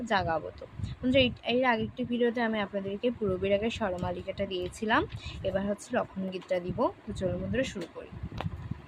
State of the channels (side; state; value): both; identical; correlation 1.00